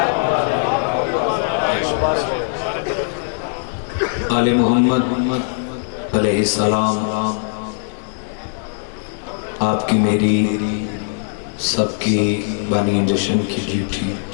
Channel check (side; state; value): right; silent; digital silence